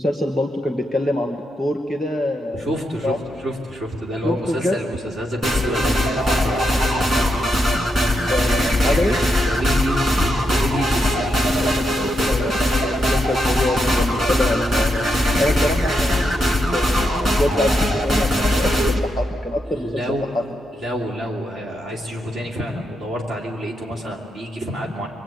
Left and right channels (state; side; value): normal; both; correlation 0.83